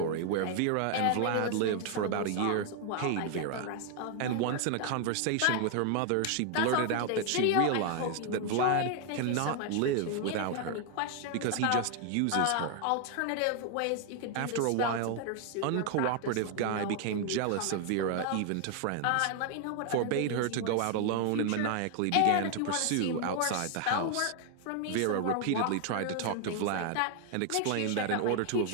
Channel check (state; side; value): different; both; correlation 0.00